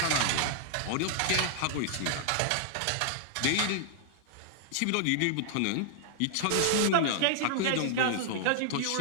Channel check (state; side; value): different; both; correlation -0.01